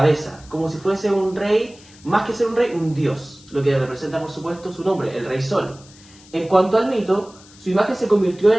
como si fuese un rey, más que ser un rey, un dios, lo que representa, por supuesto, su nombre, el Rey Sol. En cuanto al mito, su imagen se convirtió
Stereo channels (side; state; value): left; noise; hiss, 24 dB below the sound